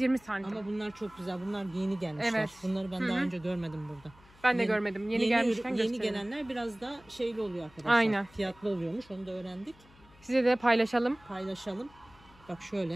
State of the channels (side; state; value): left; noise; hum, 26 dB below the sound